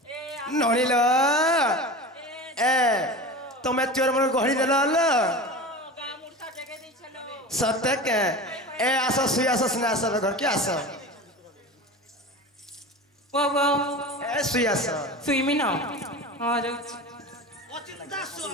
নড়িল এ তুমি চোর মনে গহড়ি দেল সত্যি কে এ আসো শুই আসো সিনে আসো ঘর কি আসো वो वो এ শুই আসো सुई में ना हाँ जो অচিন্তা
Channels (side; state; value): both; normal; correlation 0.31